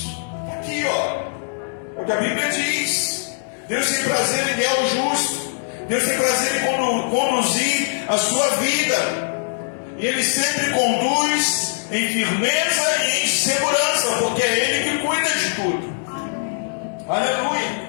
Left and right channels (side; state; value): right; silent; digital silence